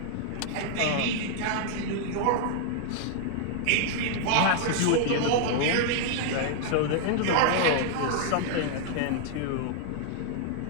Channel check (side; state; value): both; different; correlation 0.00